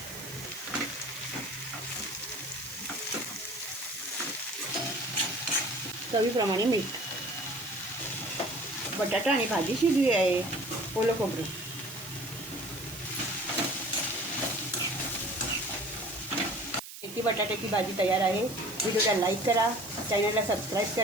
चवीप्रमाणे मीठ. बटाटा आणि भाजी शिजली आहे. ओलं खोबरं, मेथी बटाट्याची भाजी तयार आहे. व्हिडिओला लाईक करा, चॅनलला सबस्क्राईब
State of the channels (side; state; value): right; noise; hiss, 12 dB below the sound